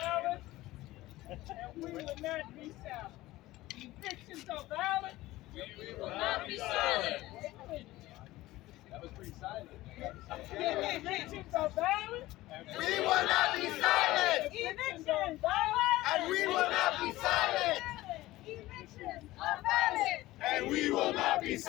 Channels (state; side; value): quieter; right; 17.5 dB